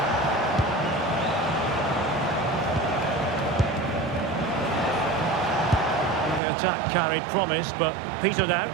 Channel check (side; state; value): left; drops out; at 6.4 s